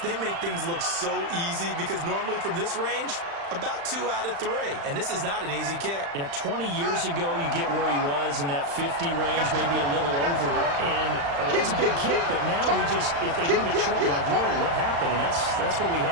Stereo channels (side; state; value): left; late; 35 ms